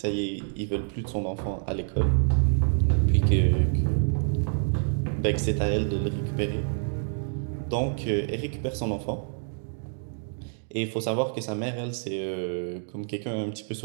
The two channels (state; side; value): silent; left; digital silence